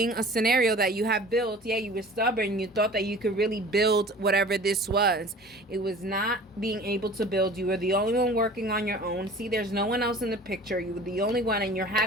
a scenario that you have built. Yeah, you were stubborn. You thought that you could really build whatever this was. It was not being able to build. You were the only one working on your own. See, there's no one else in the picture. You were the only one, and you're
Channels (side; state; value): both; normal; correlation 0.44